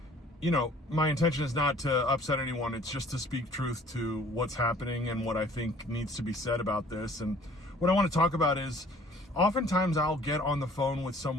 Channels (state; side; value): normal; both; correlation 0.54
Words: you know, my intention is not to upset anyone. It's just to speak truth to what's happening and what I think needs to be said about this. And what I want to talk about is, oftentimes I'll get on the phone with